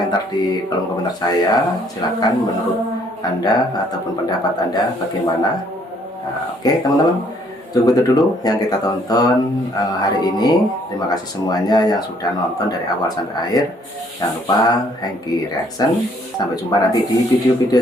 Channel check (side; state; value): both; normal; correlation 0.64